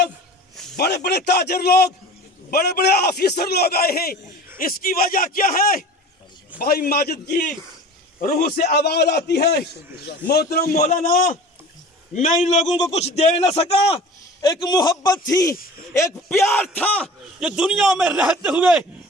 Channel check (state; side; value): normal; both; correlation 0.40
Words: बड़े बड़े ताजर लोग, बड़े बड़े ऑफिसर लोग आए हैं। इसकी वजह क्या है? भाई माजिद की रूह से आवाज आती है, मोहतरम मौलाना, मैं इन लोगों को कुछ दे न सका। एक मोहब्बत थी, एक प्यार था, जो दुनिया में रहते हुए